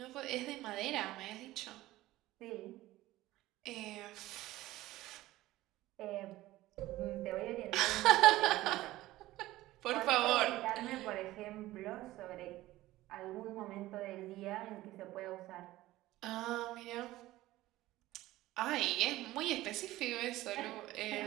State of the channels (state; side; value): quieter; left; 16.7 dB